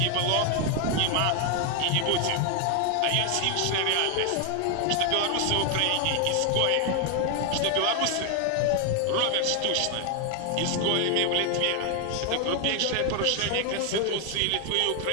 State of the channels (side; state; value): both; different; correlation 0.00